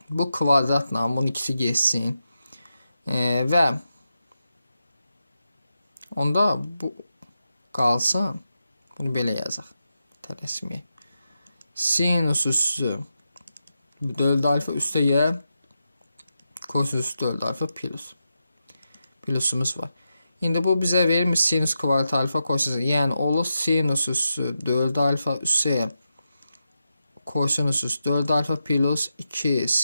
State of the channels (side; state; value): both; inverted; correlation -0.88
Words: Bu kvadratla bunun ikisi geçsin. Və onda bu qalsın. Bunu belə yazaq. Tələsməyək. Sinus üstü 4 alfa üstəgəl kosinus 4 alfa plus. Plusumuz var. İndi bu bizə verir sinus kvadrat alfa kosinus. Yəni olur sinus üstü 4 alfa üstəgəl kosinus üstü 4 alfa plus 2